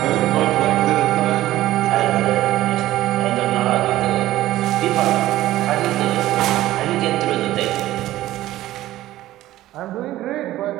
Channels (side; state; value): left; quieter; 15.1 dB